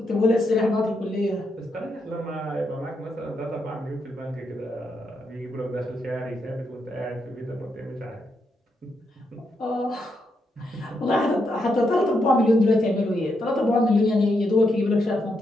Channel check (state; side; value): normal; both; correlation 0.81